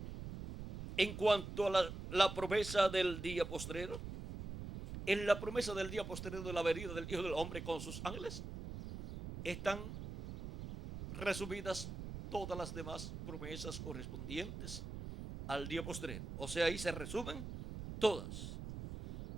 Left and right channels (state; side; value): noise; right; rumble, 8 dB below the sound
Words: en cuanto a la promesa del día postrero. En la promesa del día postrero de la venida del Hijo del Hombre con sus ángeles están resumidas todas las demás promesas correspondientes al día postrero. O sea, ahí se resumen todas.